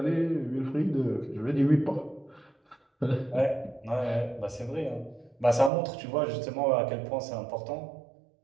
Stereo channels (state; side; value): drops out; left; at 5.7 s